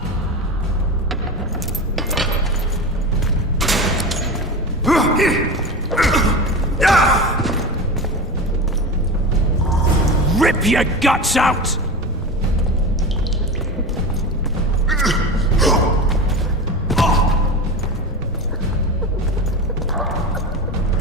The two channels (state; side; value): normal; both; correlation 0.26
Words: Rip your guts out!